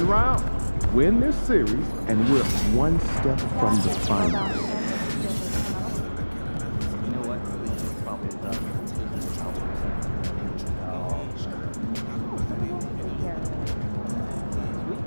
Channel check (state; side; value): inverted; both; correlation -1.00